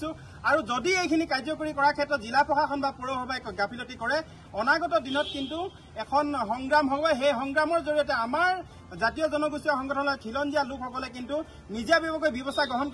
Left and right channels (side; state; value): both; identical; correlation 1.00